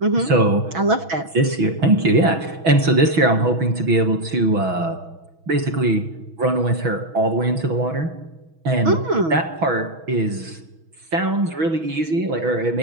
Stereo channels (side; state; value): left; late; 6.2 ms